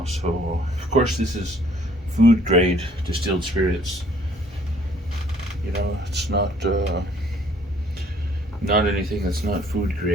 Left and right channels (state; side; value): normal; both; correlation 0.59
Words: So of course this is food grade distilled spirits. You know, it's not anything that's not food